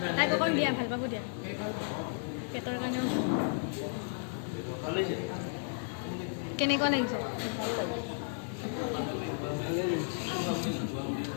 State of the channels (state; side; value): silent; right; digital silence